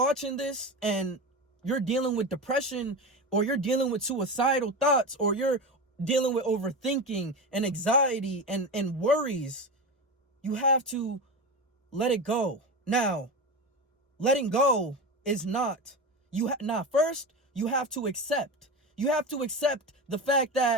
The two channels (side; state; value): both; normal; correlation 0.23